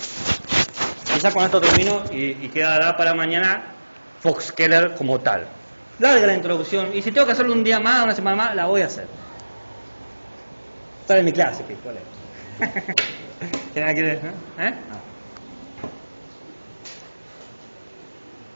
Quizás con esto termino y quedará para mañana Fox Keller como tal. Larga la introducción, y si tengo que hacerlo un día más, una semana más, la voy a hacer. Está en mi clase, ¿qué? ¿Cuál es? ¿Quiere?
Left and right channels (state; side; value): inverted; both; correlation -1.00